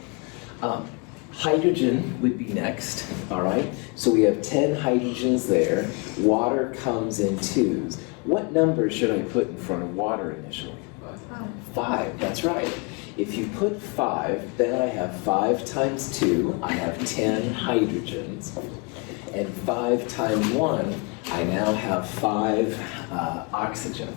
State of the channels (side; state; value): right; quieter; 30.7 dB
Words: Hydrogen would be next, all right? So we have 10 hydrogens there. Water comes in twos. What number should I put in front of water initially? 5, that's right. If you put 5, then I have 5 times 2, I have 10 hydrogens. And 5 times 1, I now have 5